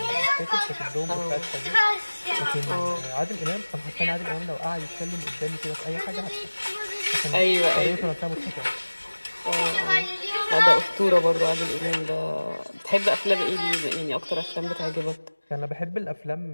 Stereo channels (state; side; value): inverted; both; correlation -1.00